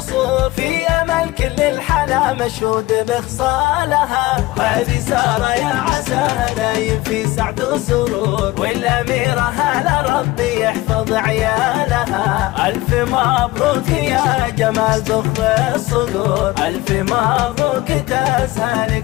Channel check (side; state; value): right; quieter; 18.8 dB